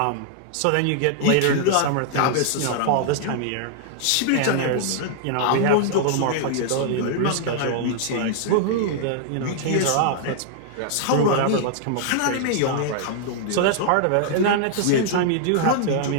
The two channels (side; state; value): both; different; correlation -0.01